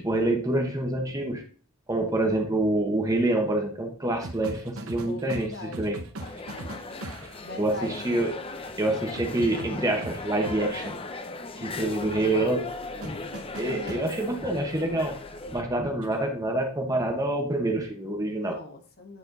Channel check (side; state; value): both; normal; correlation 0.53